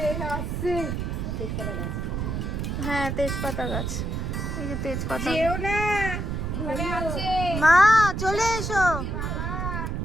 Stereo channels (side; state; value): right; noise; rumble, 2 dB below the sound